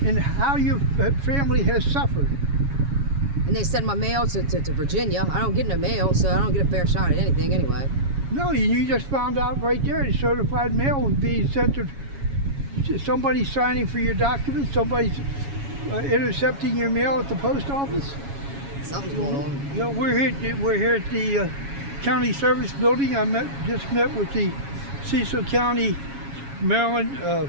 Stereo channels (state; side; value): late; left; 7.2 ms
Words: and how your family has suffered. And they sent my mail to Virginia. I don't get no mail, so I don't get a fair shot at anything anyway. No, you just found out right there the certified mail was being sent to somebody signing for your documents, somebody's intercepting your mail at the post office. Something's going on. You know, we're here at the county service building. I just met with the Cecil County Maryland